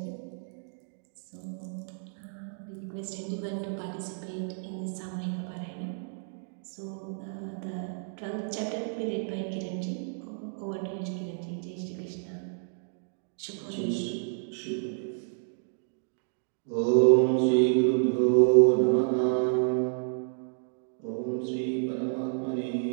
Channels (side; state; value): left; silent; digital silence